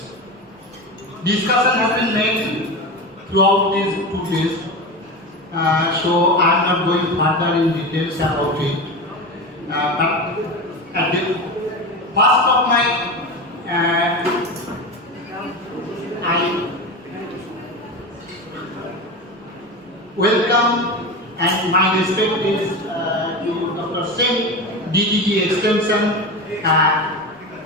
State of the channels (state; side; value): normal; both; correlation 0.24